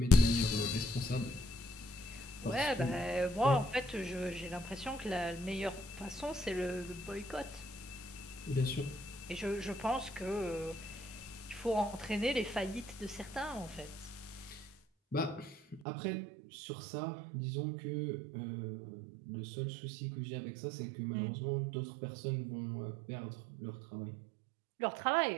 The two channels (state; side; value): drops out; left; at 15.8 s